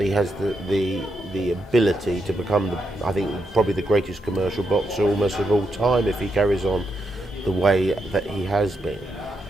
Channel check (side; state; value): both; normal; correlation 0.82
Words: he has the ability to become, I think, probably the greatest commercial boxer almost of all time if he carries on the way that he has